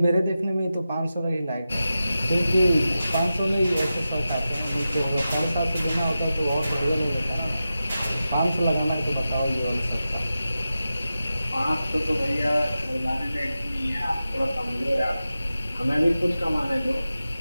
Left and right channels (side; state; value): both; inverted; correlation -0.93